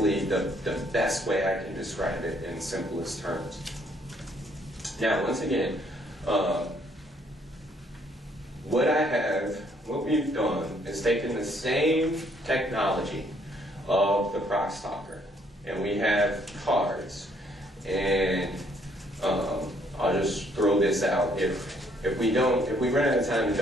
the best way I can describe it in simplest terms. Now, once again, what we've done is taken the same technology of the Crosstalker, and we have cards, and I'll just throw this out. If we run out of time and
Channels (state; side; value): normal; both; correlation 0.66